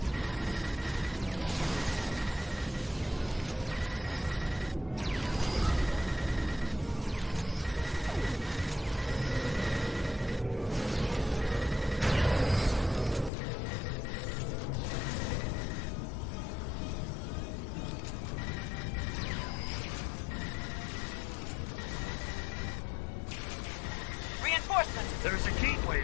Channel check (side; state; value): right; drops out; at 13.3 s